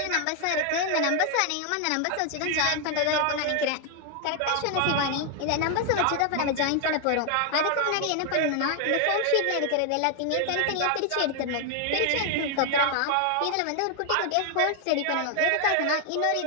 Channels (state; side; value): different; both; correlation 0.00